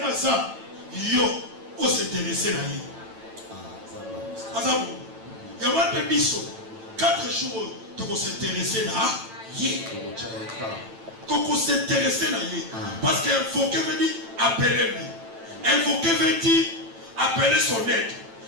za. Yo. O s'intéresser na ye. Azabu. Yama pe biso. 4 jours. Toko s'intéresser na ye. Toko s'intéresser na ye. Parce qu'invoquer veut dire appeler lui. Invoquer veut dire appeler son aide.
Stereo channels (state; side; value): late; left; 9.0 ms